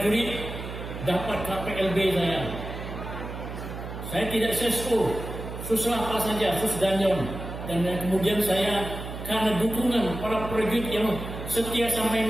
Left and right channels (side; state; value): right; noise; hum, 9 dB below the sound